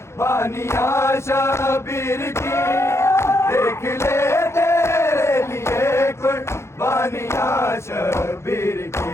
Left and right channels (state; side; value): late; right; 0.13 ms